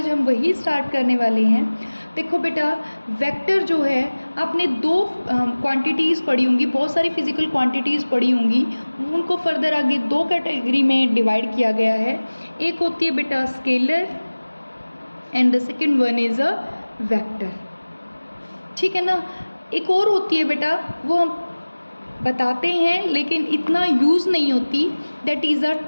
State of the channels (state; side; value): inverted; both; correlation -1.00